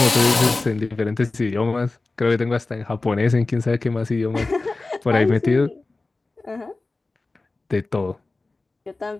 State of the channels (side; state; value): right; quieter; 3.4 dB